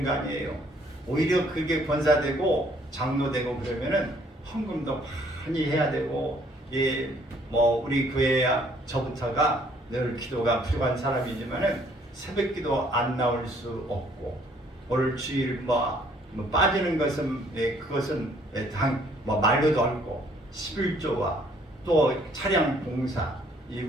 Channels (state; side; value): normal; both; correlation 0.62